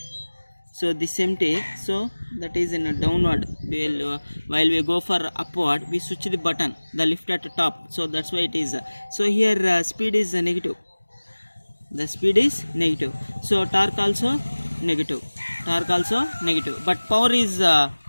So this empty. So that is in a downward. While we go for upward, we switch the button, the lift at the top. So that's why it is. So here speed is negative. The speed is negative. So torque also negative. Torque also negative. But power is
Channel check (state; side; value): inverted; both; correlation -1.00